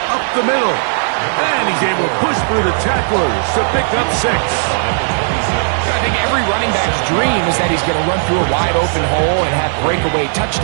up the middle. And he He's able to push through the tacklers to pick up 6. I think every running back's dream is that he's going to run through a wide open hole and have breakaway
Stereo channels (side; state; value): left; silent; digital silence